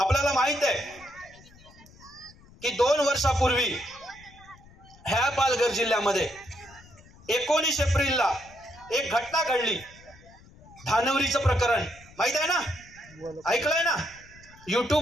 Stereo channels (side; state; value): left; noise; rumble, 24 dB below the sound